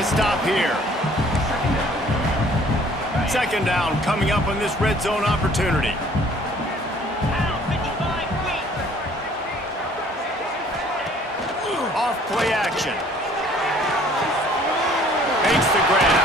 stop here. 2nd down coming up on this red zone opportunity. Off play action. Makes the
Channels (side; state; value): both; normal; correlation 0.56